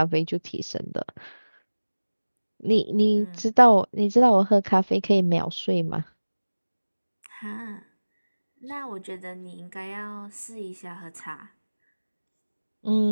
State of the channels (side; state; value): both; inverted; correlation -1.00